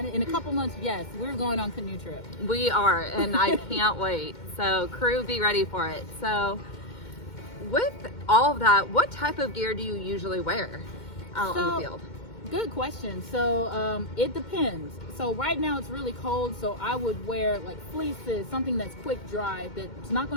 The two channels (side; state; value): right; late; 2.1 ms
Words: In a couple months, yes, we're going on canoe trip. We are, and I can't wait. So crew, be ready for it. So with all of that, what type of gear do you usually wear out in the field? Good question. So it depends. So right now it's really cold, so I would wear like fleeces, something that's quick dry, that's not